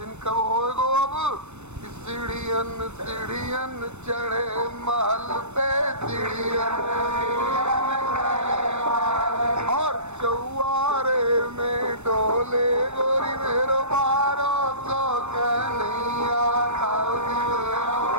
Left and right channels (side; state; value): left; late; 0.82 ms